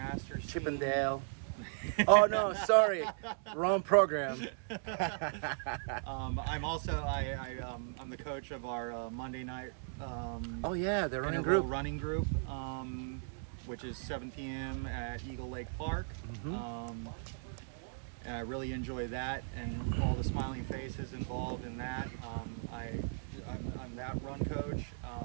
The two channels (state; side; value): silent; left; digital silence